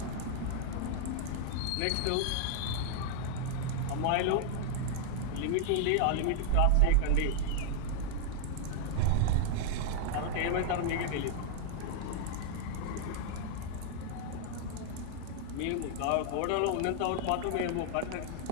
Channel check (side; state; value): both; different; correlation -0.01